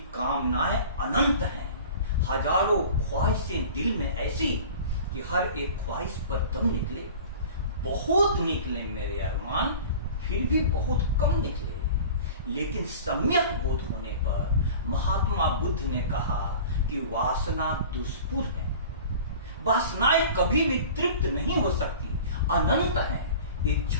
कामनाएं अनंत हैं, हजारों ख्वाहिशें दिल में ऐसी कि हर एक ख्वाहिश पर दम निकले। बहुत निकले मेरे अरमान, फिर भी बहुत कम निकले। लेकिन सम्यक बोध होने पर महात्मा बुद्ध ने कहा कि वासना दुष्पुर है, वासनाएं कभी भी तृप्त नहीं हो सकती, अनंत है।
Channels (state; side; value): inverted; both; correlation -0.40